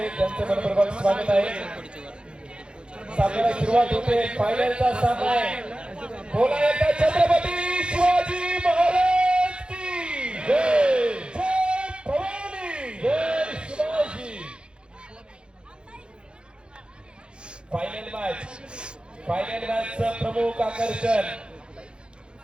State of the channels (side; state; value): left; late; 0.053 ms